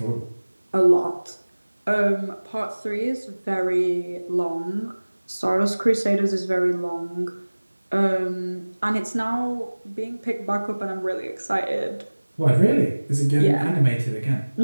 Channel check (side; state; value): both; inverted; correlation -1.00